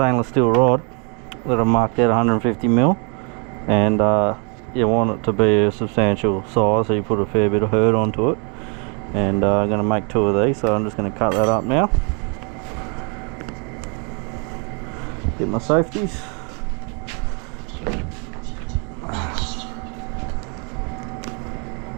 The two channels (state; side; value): quieter; left; 35.8 dB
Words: steel rod that I've marked out 150mm, and you want it to be a substantial size, so you put a fair bit of hurt onto it. And I'm going to make 2 of these, so I'm just going to cut that up now. Get my safeties.